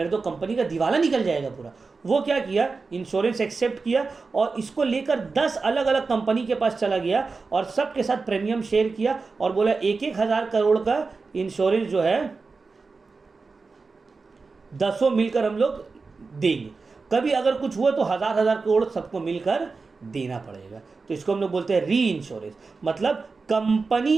तो कंपनी का दिवाला निकल जाएगा पूरा। वो क्या किया, इंश्योरेंस एक्सेप्ट किया और इसको लेकर 10 अलग अलग कंपनी के पास चला गया और सबके साथ प्रीमियम शेयर किया और बोला 1,000 करोड़ का इंश्योरेंस जो है 10 मिलकर हम लोग देंगे, कभी अगर कुछ हुआ तो 1,000 करोड़ सबको मिलकर देना पड़ेगा। तो इसको हम लोग बोलते हैं री इंश्योरेंस। मतलब कंपनी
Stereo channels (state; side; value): quieter; left; 4.3 dB